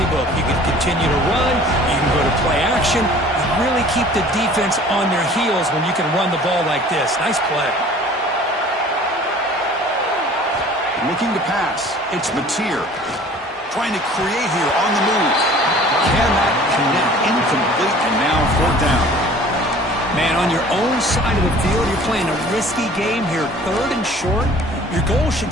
You can continue to run. You can go to play action. You really keep the defense on their heels when you can run the ball like this. Nice play. Looking to pass. It's Mateer. Trying to create here on the move. Cannot connect. Incomplete, and now 4th down. Man, on your own side of the field, you're playing a risky game here. 3rd and short. Your goal should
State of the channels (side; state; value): both; normal; correlation 0.48